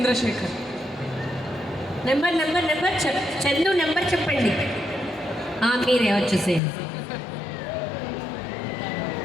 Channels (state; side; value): drops out; right; at 6.6 s